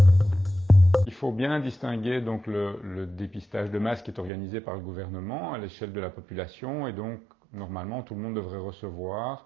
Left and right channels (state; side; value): drops out; left; at 4.3 s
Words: Il faut bien distinguer donc le dépistage de masse qui est organisé par le gouvernement à l'échelle de la population et donc normalement tout le monde devrait recevoir